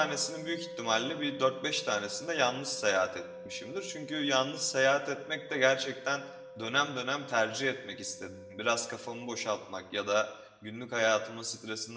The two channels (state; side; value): identical; both; correlation 1.00